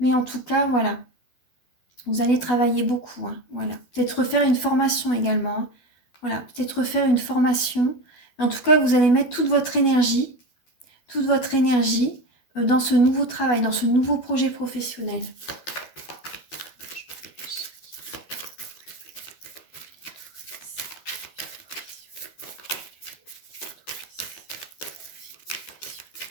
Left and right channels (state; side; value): late; right; 12 ms